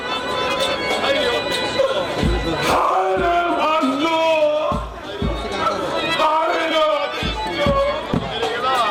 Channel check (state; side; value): identical; both; correlation 1.00